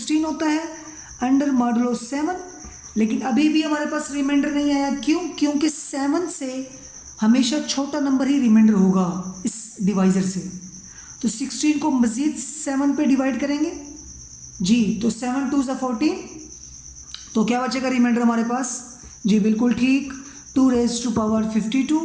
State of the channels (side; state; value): both; identical; correlation 1.00